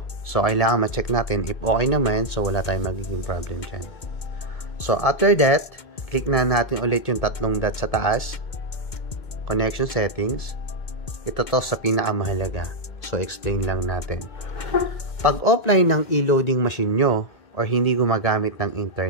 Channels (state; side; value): late; right; 2.1 ms